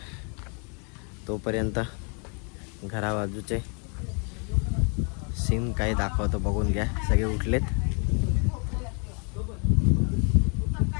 तोपर्यंत घराबाजूचे सीन काही दाखवतो बघून घ्या. सगळे उठलेत.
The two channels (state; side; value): quieter; right; 37.2 dB